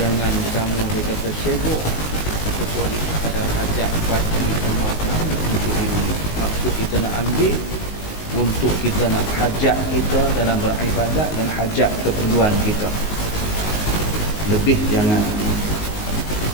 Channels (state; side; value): late; right; 19 ms